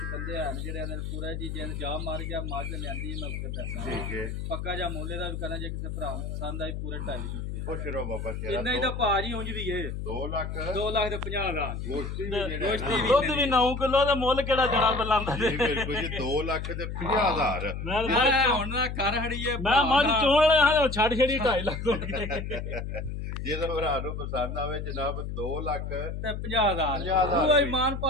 ਬੰਦੇ ਹਨ ਜਿਹੜੇ ਨੇ ਪੂਰਾ ਜੀ ਜੇ ਜਾ ਮਾਰ ਗਿਆ ਮਾਝ ਲਿਆਂਦੀ ਮੈਂ ਉੱਤੇ ਪੈਸਾ ਠੀਕ ਹੈ ਪੱਕਾ ਜਿਹਾ ਮੁੱਲ ਦਾ ਵੀ ਕਰਨਾ ਜੇ ਕਿਸੇ ਭਰਾ ਨੂੰ ਪਸੰਦ ਆਈ ਪੂਰੇ 2.5 ਦੇ ਖੁਸ਼ ਰਹੋ ਬਾਬਾ ਸ਼ੇਰਾ ਇੰਨਾ ਹੀ ਤਾਂ ਭਾਜੀ ਉਂਝ ਵੀ ਏ 2 ਲੱਖ 2 ਲੱਖ ਤੇ 50,000 ਗੋਸ਼ਤੀ ਵੀ ਜਿਹੜਾ ਗੋਸ਼ਤੀ ਨਾ ਦੁੱਧ ਵੀ 9 ਕਿਲੋ ਦਾ ਮੁੱਲ ਕਿਹੜਾ ਜਣਾ ਬਲਾਂਦਾ ਜੀ ਬਿਲਕੁਲ ਜੀ 2 ਲੱਖ ਤੇ 50,000 ਮੈਂ ਹੁਣ ਨਾ ਕਰ ਹੜੀਏ ਮੈਂ ਮੱਝ ਚੋਣ ਵਾਲਾ ਹਾਂ ਛੱਡ ਛੜੀ 2.5 ਲੱਖ ਹੋ ਗਏ ਜਿਹਦਾ ਭਰਾ ਨੂੰ ਪਸੰਦ ਆਵੇ ਜਨਾਬ 2 ਲੱਖ ਤੇ 50,000 ਉਹ ਇਮਾਨ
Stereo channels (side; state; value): left; noise; hum, 5 dB below the sound